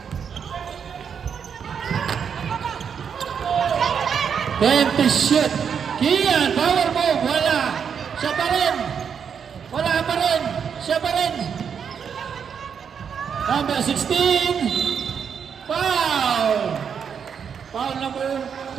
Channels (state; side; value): quieter; left; 7.1 dB